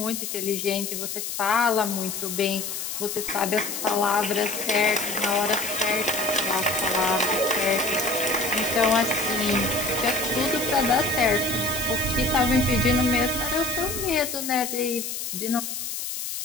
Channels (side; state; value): left; noise; hiss, 5 dB below the sound